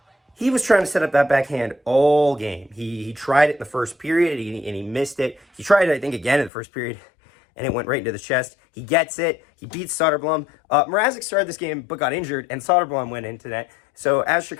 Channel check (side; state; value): right; drops out; at 6.5 s